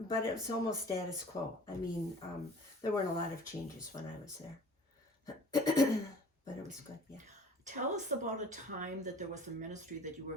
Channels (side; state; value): both; normal; correlation 0.47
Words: it was almost status quo. I mean, there weren't a lot of changes when I was there. But it was good, yeah. Tell us about a time that there was a ministry that you were